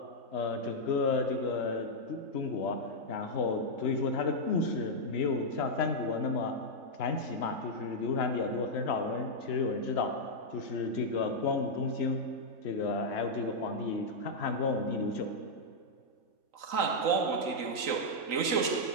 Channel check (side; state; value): left; late; 3.8 ms